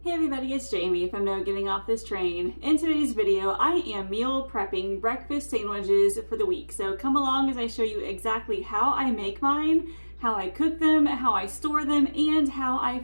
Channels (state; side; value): inverted; both; correlation -1.00